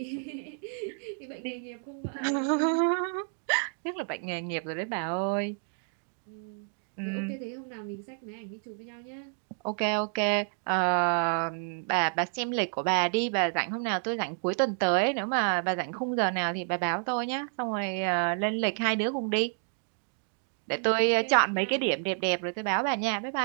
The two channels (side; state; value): left; silent; 57 dB below the other